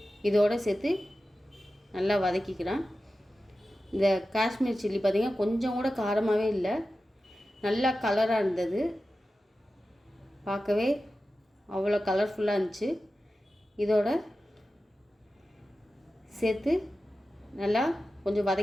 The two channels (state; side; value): normal; both; correlation 0.93